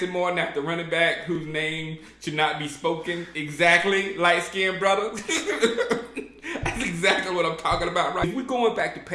more than after running back whose name should not be spoken. Exactly, light skinned brother. That's exactly what I'm talking about, right? If we're going back to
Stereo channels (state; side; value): identical; both; correlation 1.00